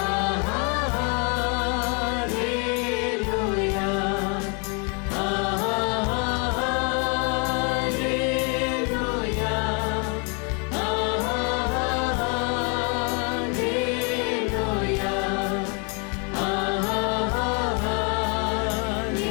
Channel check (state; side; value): quieter; right; 35.5 dB